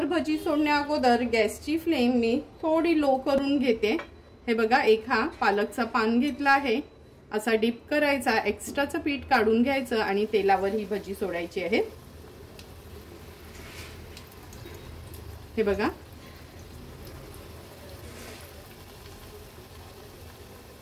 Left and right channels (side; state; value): both; identical; correlation 1.00